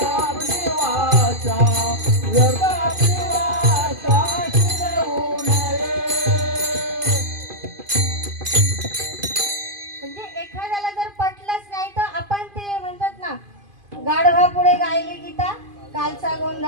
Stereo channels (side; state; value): left; late; 2.5 ms